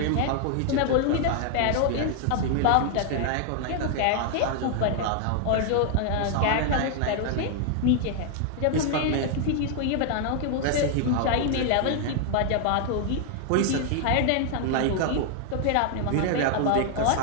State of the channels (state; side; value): different; both; correlation 0.00